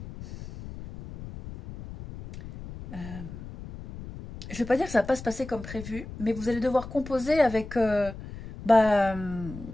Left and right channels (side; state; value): left; noise; rumble, 12 dB below the sound